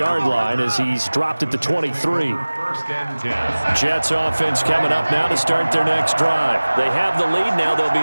line as he's dropped at the 23. Jets offense coming up now to start their next drive. They have the lead now. They'll be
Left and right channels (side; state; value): both; inverted; correlation -1.00